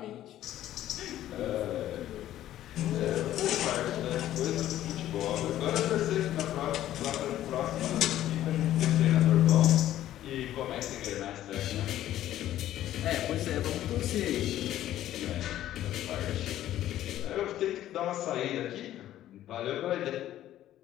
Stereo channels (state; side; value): quieter; right; 12.9 dB